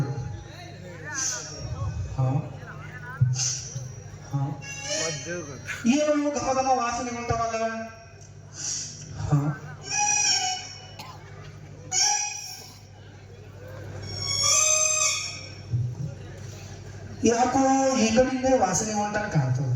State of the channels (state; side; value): identical; both; correlation 1.00